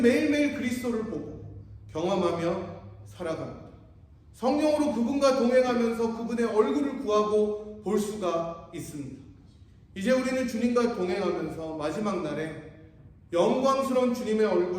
매일매일 그리스도를 보고 경험하며 살아갑니다. 성령으로 그분과 동행하면서 그분의 얼굴을 구하고 볼 수가 있습니다. 이제 우리는 주님과 동행하면서 마지막 날에 영광스러운 주님의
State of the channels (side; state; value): both; identical; correlation 1.00